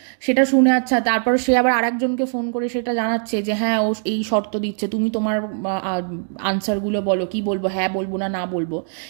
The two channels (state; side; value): silent; left; digital silence